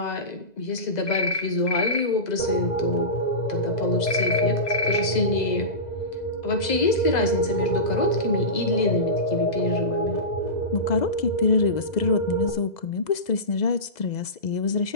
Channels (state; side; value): late; right; 2.0 ms